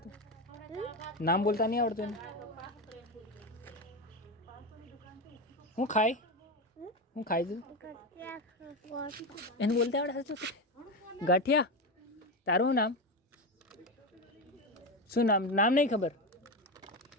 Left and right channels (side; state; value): both; normal; correlation 0.16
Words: નામ બોલતા નહીં આવડતું એને? હું ખાય? હું ખાય તું? એને બોલતા આવડે સાચું? ગાંઠિયા. તારું નામ શું? નામ નામ નહીં ખબર?